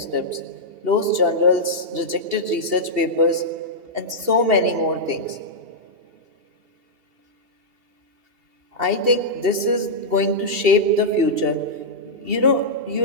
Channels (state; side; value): late; left; 2.7 ms